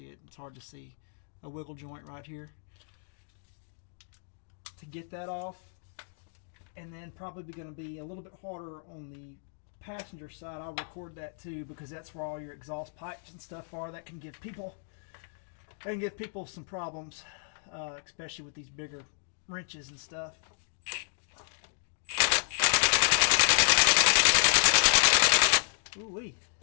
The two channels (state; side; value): silent; right; digital silence